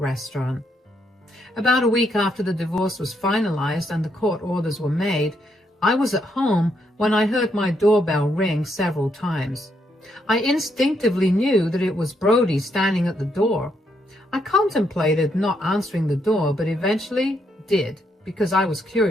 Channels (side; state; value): both; normal; correlation 0.76